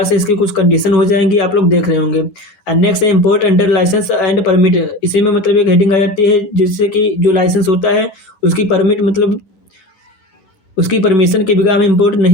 से इसकी कुछ कंडीशन हो जाएंगी, आप लोग देख रहे होंगे। एंड नेक्स्ट है import under licence and permit, इसी में मतलब एक हेडिंग आ जाती है जिससे कि जो लाइसेंस होता है उसकी परमिट मतलब उसकी परमिशन के बिना हम इंपोर्ट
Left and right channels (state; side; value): late; right; 11 ms